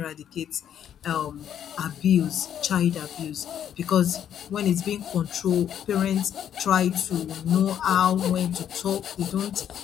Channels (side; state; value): right; quieter; 9.6 dB